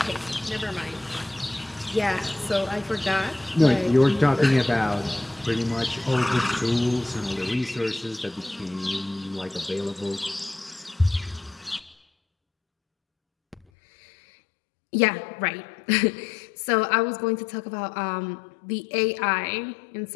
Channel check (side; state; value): right; drops out; at 13.7 s